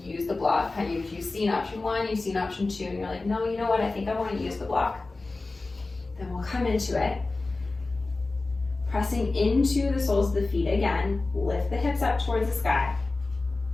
use the block, if you've seen option 1, you've seen option 2, and you're like, no, you know what, I think I want to use the block, then we'll come into it. Pressing into the soles of the feet again, lift the hips up towards the sky.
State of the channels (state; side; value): quieter; right; 3.4 dB